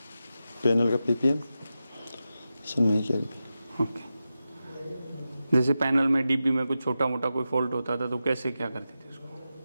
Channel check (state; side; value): inverted; both; correlation -0.91